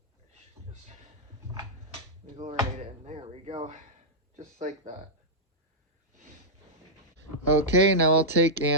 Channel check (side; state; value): both; normal; correlation -0.08